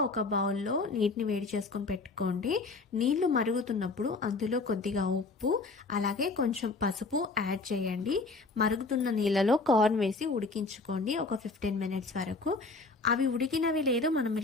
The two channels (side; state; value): right; quieter; 3.7 dB